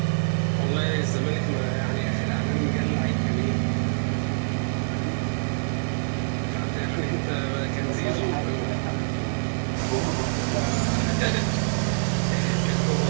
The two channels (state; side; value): quieter; left; 37.8 dB